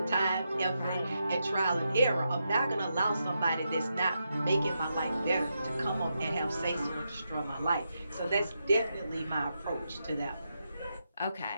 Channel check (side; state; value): both; inverted; correlation -0.85